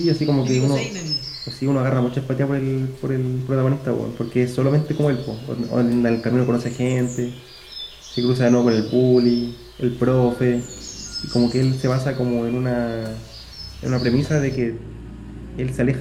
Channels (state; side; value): identical; both; correlation 1.00